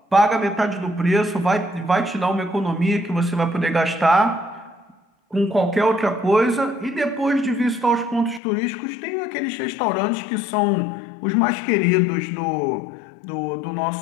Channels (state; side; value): drops out; right; at 8.4 s